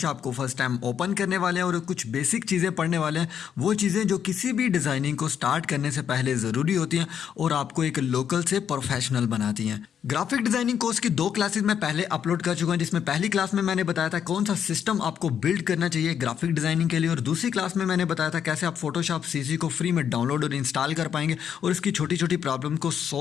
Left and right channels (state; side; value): quieter; right; 8.4 dB